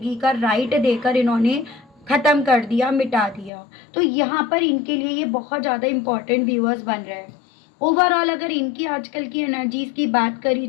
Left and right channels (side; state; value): right; drops out; at 3.5 s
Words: का राइट देकर इन्होंने ख़त्म कर दिया, मिटा दिया। तो यहाँ पर इनके लिए ये बहुत ज़्यादा इम्पॉर्टेंट व्यूअर्स बन रहे हैं। ओवरऑल अगर इनकी आजकल की एनर्जीज़ की बात करी